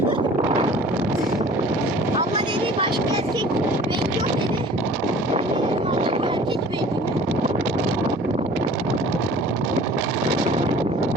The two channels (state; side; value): normal; both; correlation 0.47